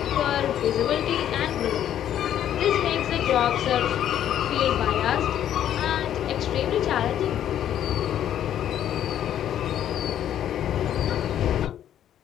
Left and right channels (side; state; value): right; quieter; 10.7 dB